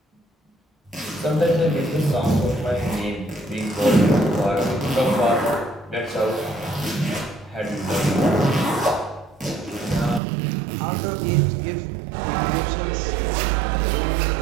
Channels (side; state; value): left; drops out; at 10.2 s